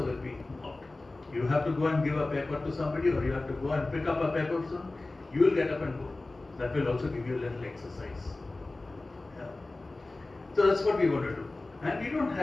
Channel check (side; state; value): right; quieter; 3.1 dB